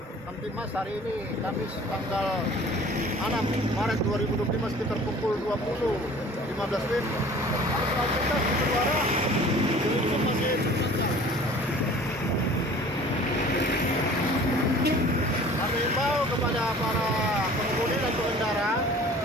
Kamtibmas hari ini Kamis tanggal 6 Maret 2025 sekitar pukul 20.15 WIB. Arus lalu lintas di Bendara belum masih lancar. Kami himbau kepada para pengemudi dan pengendara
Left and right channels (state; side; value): normal; both; correlation 0.47